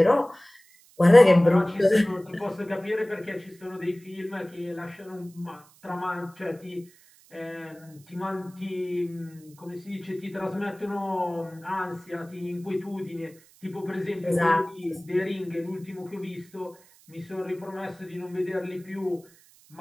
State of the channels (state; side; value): noise; right; hiss, 27 dB below the sound